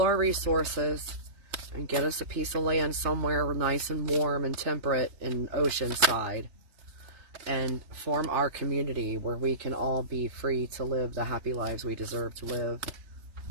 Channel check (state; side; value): late; left; 3.3 ms